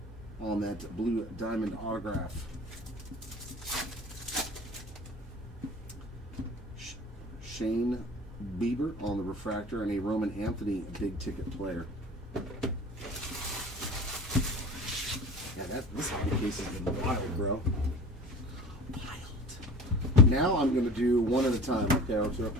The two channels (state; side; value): normal; both; correlation 0.39